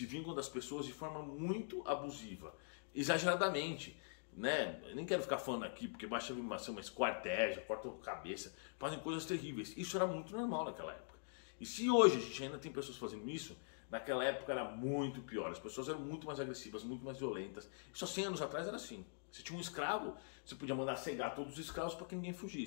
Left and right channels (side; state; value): right; silent; digital silence